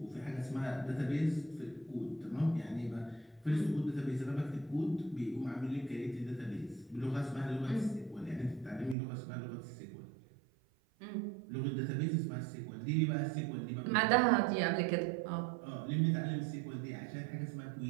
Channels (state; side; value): drops out; left; at 9.0 s